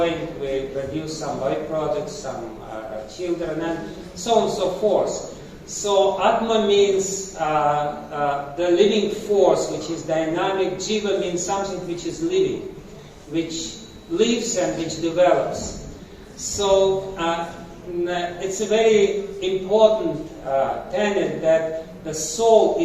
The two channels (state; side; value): identical; both; correlation 1.00